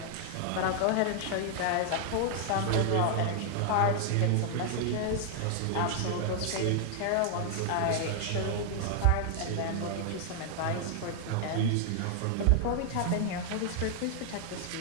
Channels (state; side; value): different; both; correlation 0.00